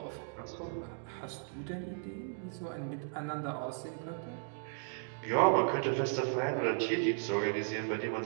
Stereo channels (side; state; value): left; silent; digital silence